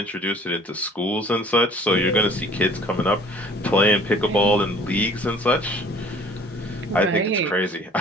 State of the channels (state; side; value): normal; both; correlation 0.52